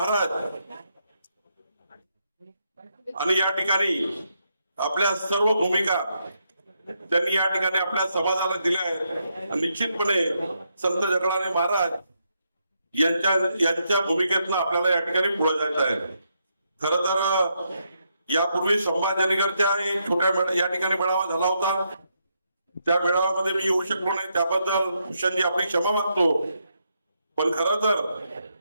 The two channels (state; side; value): inverted; both; correlation -0.80